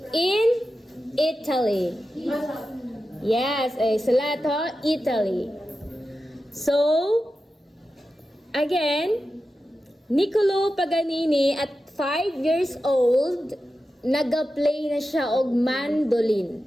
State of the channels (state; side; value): normal; both; correlation 0.92